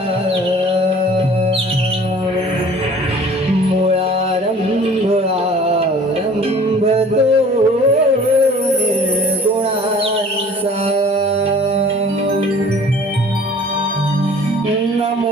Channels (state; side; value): normal; both; correlation 0.49